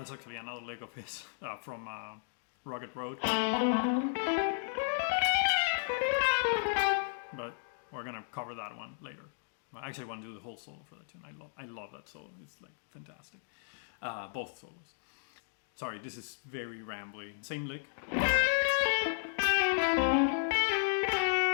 actually another lick of his from Rugged Road. But we're gonna cover that one later. I actually want to do the whole solo for that tune. I love that solo. It's like fantastic. Both solos. Sorry, this is very rambly. Same lick.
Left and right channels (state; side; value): silent; right; digital silence